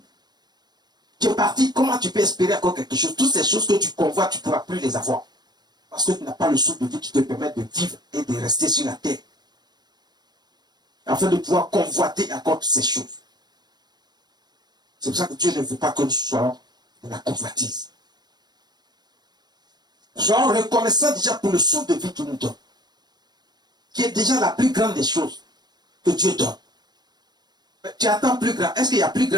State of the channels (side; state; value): left; late; 0.20 ms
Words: Tu es parti, comment tu peux espérer encore quelque chose? Toutes ces choses que tu convoites, tu ne pourras plus les avoir. Parce que tu n'as pas le souffle de vie qui te permet de vivre et de rester sur la terre. Afin de pouvoir convoiter encore toutes ces choses. C'est pour ça que Dieu ne veut pas que nous soyons de la convoitise. Soyons reconnaissants déjà pour le souffle de vie qu'il nous donne. Qui est déjà la plus grande des choses que Dieu donne. Mais tu attends plus grand. Est-ce qu'il y a plus